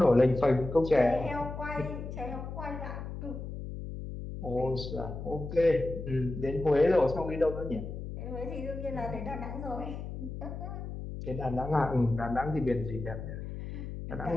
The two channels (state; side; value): noise; left; hum, 8 dB below the sound